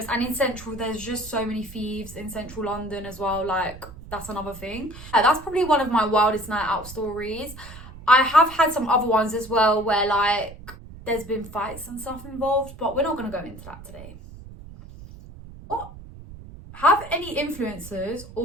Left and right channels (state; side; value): noise; right; rumble, 16 dB below the sound